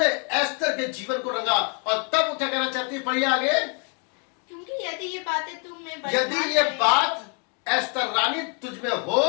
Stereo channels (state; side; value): quieter; right; 35.8 dB